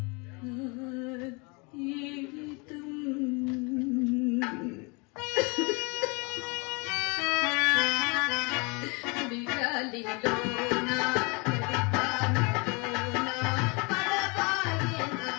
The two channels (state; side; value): quieter; right; 30.4 dB